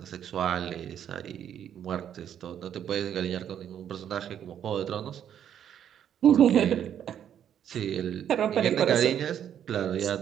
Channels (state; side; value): quieter; left; 9.5 dB